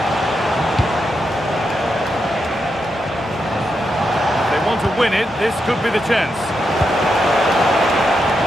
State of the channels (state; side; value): normal; both; correlation 0.84